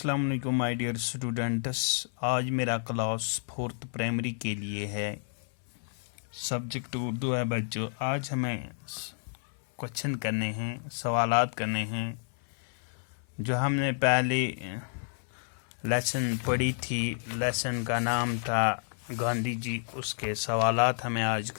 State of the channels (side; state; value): right; silent; 58 dB below the other